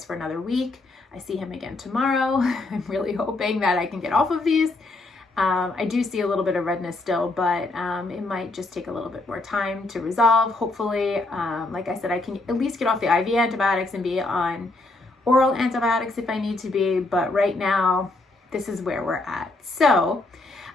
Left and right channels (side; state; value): right; quieter; 3.0 dB